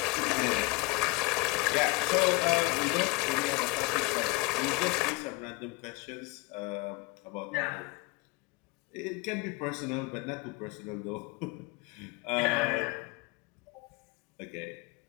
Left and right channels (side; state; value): right; quieter; 24.1 dB